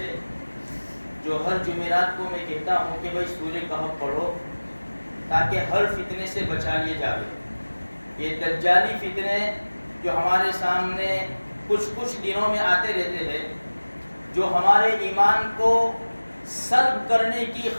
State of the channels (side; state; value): both; inverted; correlation -1.00